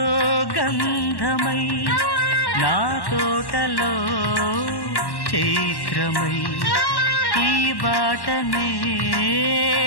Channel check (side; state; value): right; late; 1.1 ms